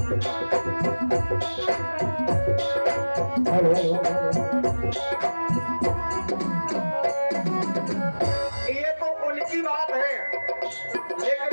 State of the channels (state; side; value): inverted; both; correlation -1.00